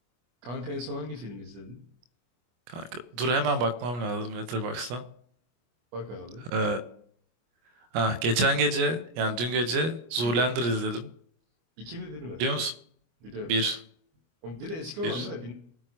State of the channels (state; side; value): late; left; 25 ms